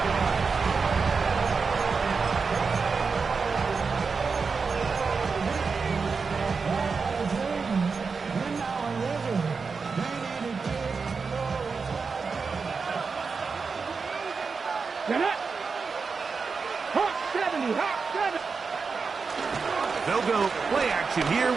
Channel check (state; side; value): quieter; left; 5.0 dB